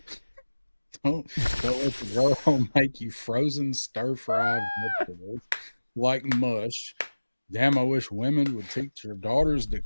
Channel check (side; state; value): both; inverted; correlation -1.00